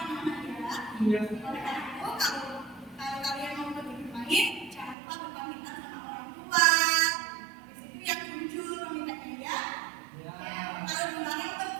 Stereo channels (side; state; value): left; drops out; at 5.0 s